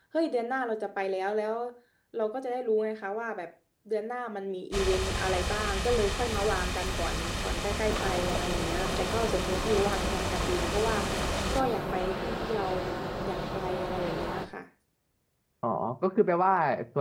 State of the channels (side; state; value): both; identical; correlation 1.00